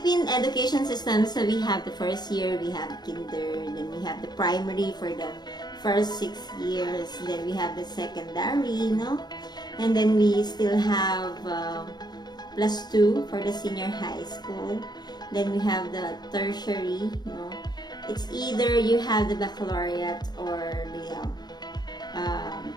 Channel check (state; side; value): late; right; 0.20 ms